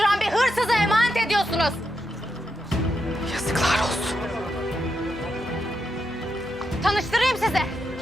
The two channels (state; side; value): normal; both; correlation 0.84